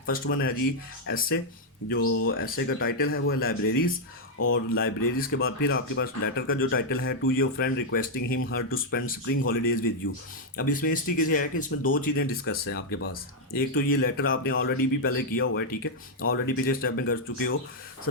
फर्स्ट वन है जी एसए। जो एसए का टाइटल है वो है लाइब्रेरीज। और लाइब्रेरीज के बाद फिर आपके पास लेटर का जो टाइटल है to your friend requesting him her to spend spring holidays with you. अब इसमें इस तरीके से है कि इसमें दो चीज़ें डिस्कस हैं आपके पास। एक तो ये लेटर आपने ऑलरेडी भी पहले किया हुआ है, ठीक है, ऑलरेडी पिछले स्टेप में कर चुके हो।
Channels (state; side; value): normal; both; correlation -0.02